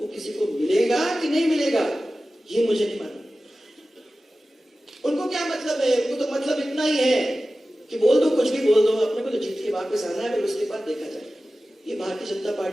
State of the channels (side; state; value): both; normal; correlation 0.95